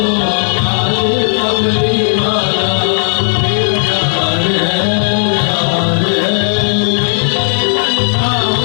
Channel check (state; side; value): silent; right; digital silence